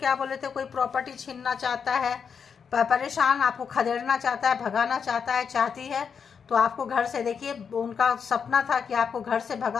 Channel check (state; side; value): quieter; right; 6.5 dB